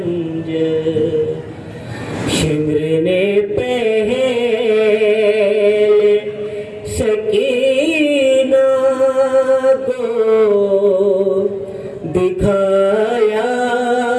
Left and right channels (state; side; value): identical; both; correlation 1.00